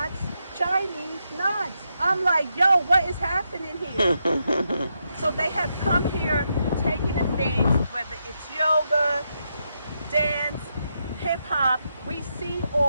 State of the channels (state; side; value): inverted; both; correlation -0.83